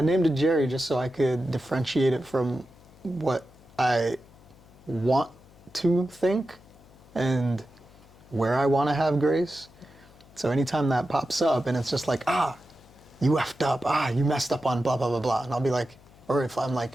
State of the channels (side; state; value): left; noise; hum, 25 dB below the sound